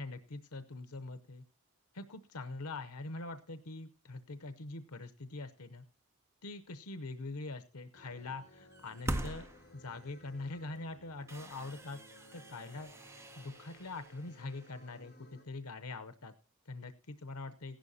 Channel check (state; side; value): normal; both; correlation 0.55